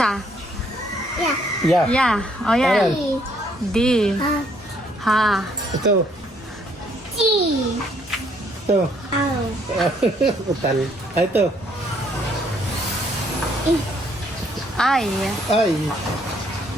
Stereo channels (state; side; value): normal; both; correlation 0.67